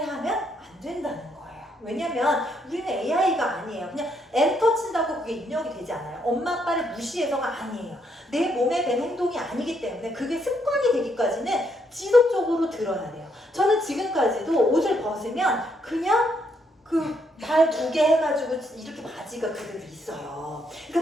하면 안 된다는 거예요. 왜냐면 우리는 AI가 아니에요. 그냥 엔터 친다고 그게 입력이 되지 않아요. 엄마 아빠를 무시해서가 아니에요. 내 몸에 밴 행동이 아니기 때문에 그게 습관이 되기까지는 지속적으로 들어야 돼요. 저는 지금까지도 옷을 벗으면 그냥 그 발 2개 해가지고 이렇게 바지가 그대로 있어요.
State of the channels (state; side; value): normal; both; correlation 0.74